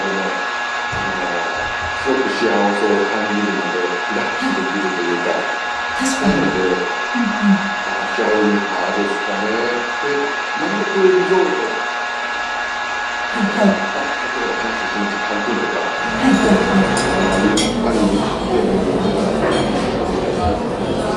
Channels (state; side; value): identical; both; correlation 1.00